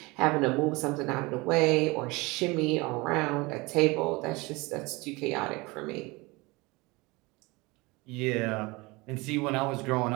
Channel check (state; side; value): quieter; left; 24.2 dB